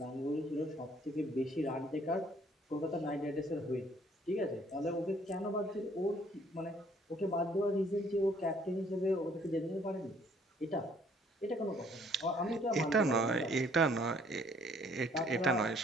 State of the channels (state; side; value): normal; both; correlation 0.62